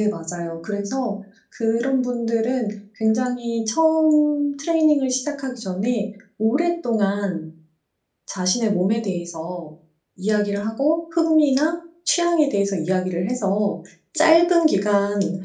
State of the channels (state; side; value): identical; both; correlation 1.00